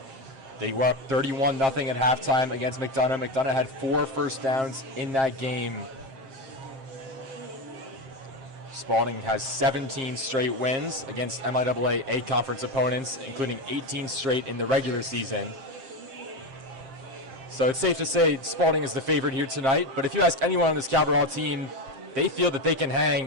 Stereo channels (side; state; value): left; late; 7.5 ms